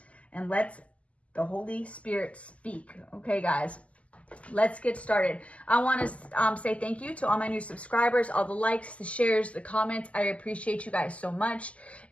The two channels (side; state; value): right; late; 0.065 ms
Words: And let the Holy Spirit speak. Okay, guys, let's get started. I want to say thank you to all my new subscribers, all the likes, the shares, the comments. I appreciate you guys so much.